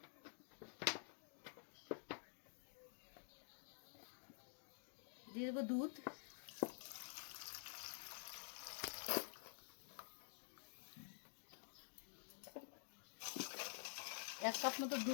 দিয়ে দেবো দুধ, 1 কাপ মতো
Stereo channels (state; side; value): silent; right; digital silence